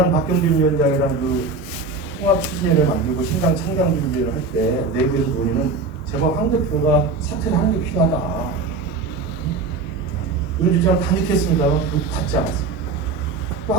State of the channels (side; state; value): left; quieter; 3.9 dB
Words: 박경림 위원장이랑 그 통합 추진회를 만들고 신당 창당 준비를 할 때 내부에서 논의는 제발 황 대표가 사퇴를 하는 게 필요하다. 이런 주장을 단축했습니다만 받지 않았습니다.